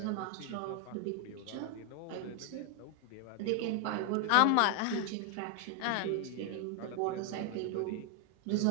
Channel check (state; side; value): different; both; correlation 0.01